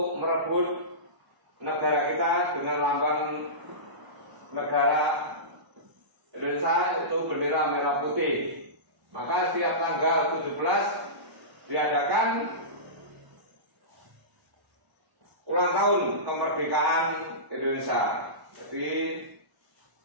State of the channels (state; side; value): late; left; 1.0 ms